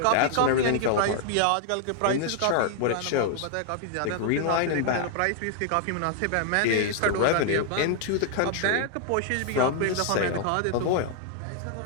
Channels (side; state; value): both; different; correlation 0.00